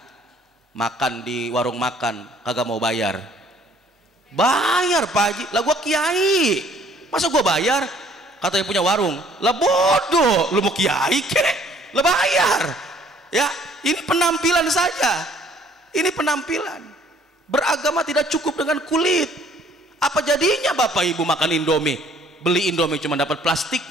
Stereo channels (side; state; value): both; normal; correlation 0.59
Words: makan di warung makan, kagak mau bayar. Bayar Pak Haji, lah gua Kiai, masa gua bayar? Katanya punya warung, lah bodoh, lu mau Kiai kek, lah bayar. Ya, ini penampilan saja, ini penampilan. Beragama tidak cukup dengan kulit. Apa jadinya Bapak Ibu makan Indomie, beli Indomie cuma dapat